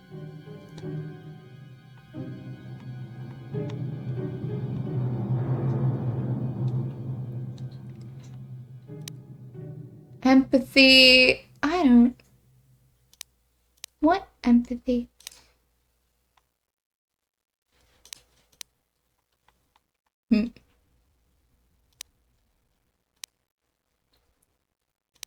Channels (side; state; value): both; identical; correlation 1.00